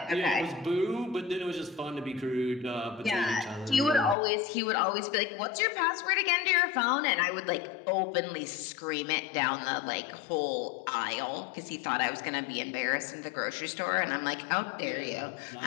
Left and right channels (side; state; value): right; drops out; at 4.2 s